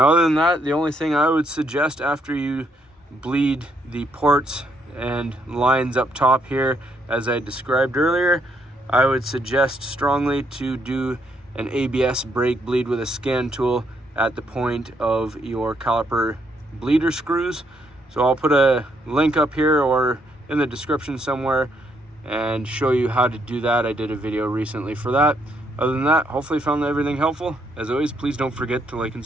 other than that, the only thing I would suggest after you bleed the ports and lines up top here, as I described earlier, I would suggest strongly to do an ABS brake bleed with a scan tool at the point of your caliper bleeder screws. So I'll put a link up here or in the description somewhere and show you how to do that. I did a video recently for that. Other than that, hopefully you found everything helpful. As always, please don't forget to like and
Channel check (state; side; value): normal; both; correlation 0.73